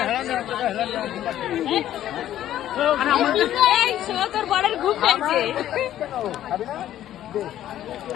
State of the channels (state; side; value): quieter; right; 12.2 dB